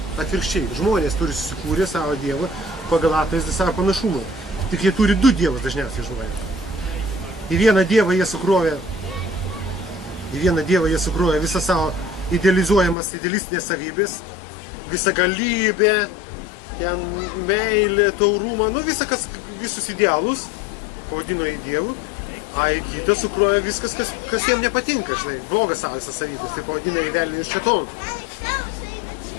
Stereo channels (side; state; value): right; drops out; at 13.0 s